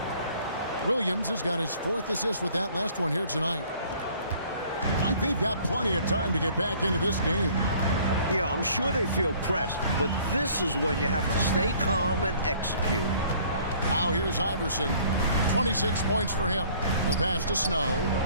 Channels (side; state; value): both; inverted; correlation -0.55